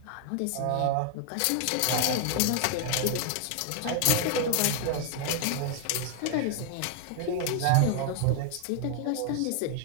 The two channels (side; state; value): both; different; correlation 0.00